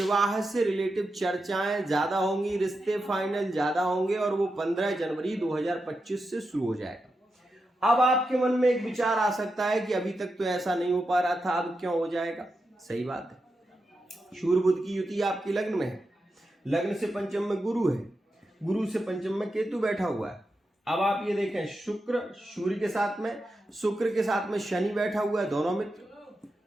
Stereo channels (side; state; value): both; normal; correlation 0.88